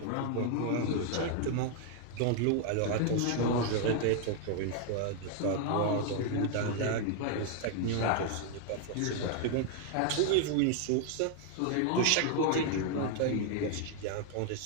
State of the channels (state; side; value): different; both; correlation 0.00